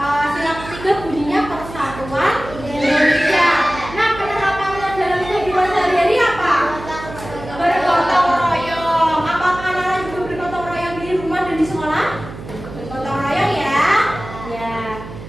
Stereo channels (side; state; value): right; noise; hum, 13 dB below the sound